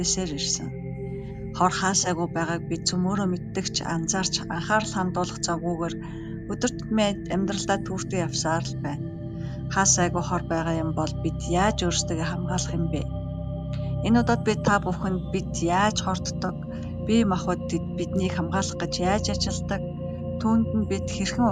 ирсэн. Хор хаасайгүй байгааг бид цөмөөрөө мэддэг ч анзаарч анхаарал хандуулах завгүйгээр өдөр тутмын амьдралдаа түүртэй явсаар л байна. Хаасайгүй хор байгаа юм бол бид яаж өөрсдөө хамгаалах юм бэ? Энэ удаад би та бүхэнд бид яаж хорддог, бие махбод биднийг хамгаалах гэж яаж ажилдаг, түүнд нь бид хэрхэн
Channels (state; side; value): identical; both; correlation 1.00